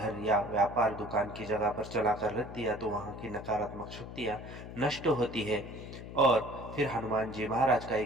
या व्यापार दुकान की जगह पर चलाकर रख दिया तो वहाँ की नकारात्मक शक्तियाँ नष्ट होती है और फिर हनुमान जी महाराज का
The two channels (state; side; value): noise; left; hum, 11 dB below the sound